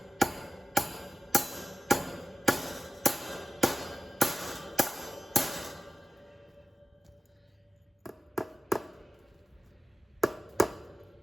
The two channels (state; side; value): normal; both; correlation 0.95